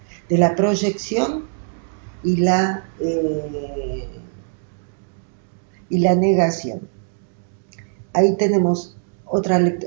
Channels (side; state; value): left; silent; digital silence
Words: de la proyección y la negación. Ahí tenemos otra